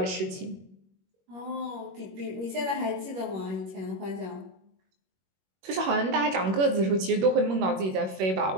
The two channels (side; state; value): left; late; 21 ms